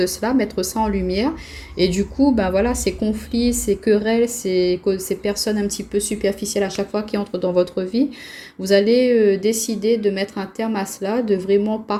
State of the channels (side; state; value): both; identical; correlation 1.00